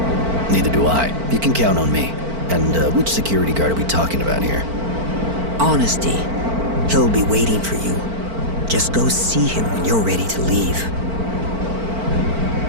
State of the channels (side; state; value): left; late; 4.5 ms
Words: Neither do I. You can count on me. And which security guard are we talking about here? Honesty. He'll be waiting for you. Just go see him when you're ready to leave.